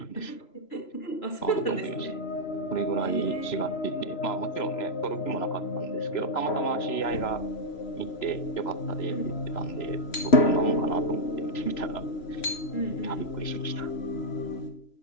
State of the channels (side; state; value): right; late; 3.0 ms